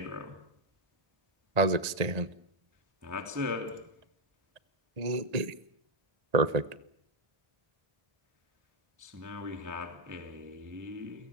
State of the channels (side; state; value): left; late; 1.8 ms